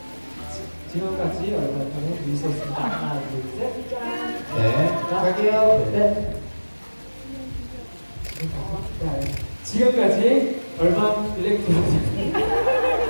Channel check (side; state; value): both; inverted; correlation -1.00